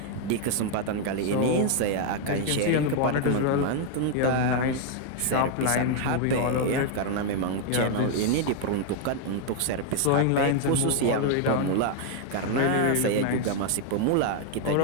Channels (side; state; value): both; different; correlation 0.00